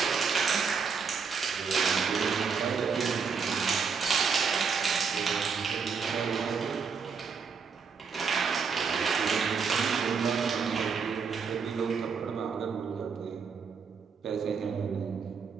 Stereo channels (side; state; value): left; quieter; 5.7 dB